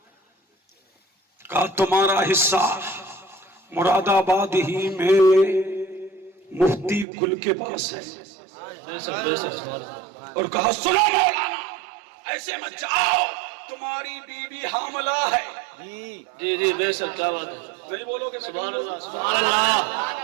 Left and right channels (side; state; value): left; drops out; at 7.1 s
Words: کہا تمہارا حصہ مراد آباد ہی میں مفتی گل کے پاس ہے، بے شک بے شک، سبحان اللہ، اور کہا سنو مولانا، ایسے مت جاؤ، تمہاری بیوی حاملہ ہے۔ جی جی بے شک، کیا بات ہے، نہیں بولو گے؟ سبحان اللہ سبحان اللہ،